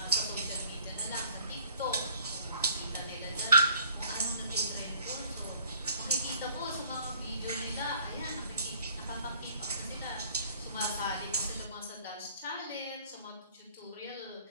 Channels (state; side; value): inverted; both; correlation -0.56